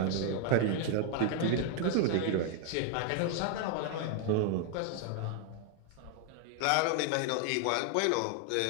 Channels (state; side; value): different; both; correlation 0.00